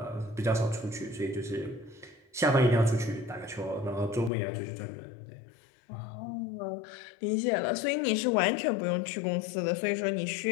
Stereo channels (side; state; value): right; drops out; at 4.3 s